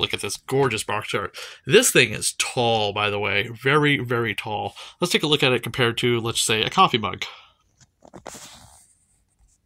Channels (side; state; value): both; identical; correlation 1.00